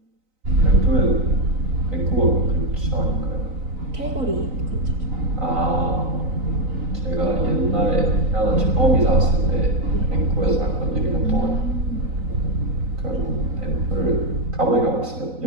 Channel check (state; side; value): late; left; 3.9 ms